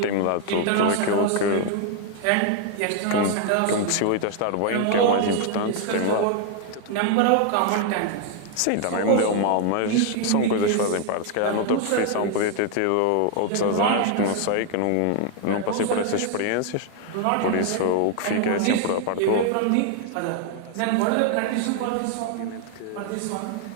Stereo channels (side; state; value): both; different; correlation 0.00